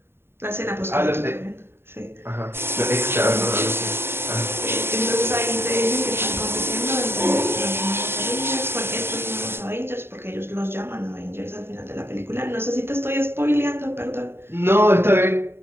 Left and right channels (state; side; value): late; left; 0.11 ms